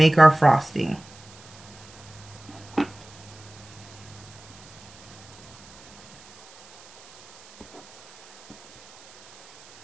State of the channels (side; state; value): right; noise; hiss, 22 dB below the sound